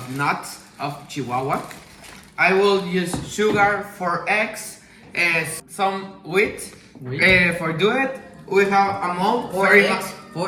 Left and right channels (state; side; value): identical; both; correlation 1.00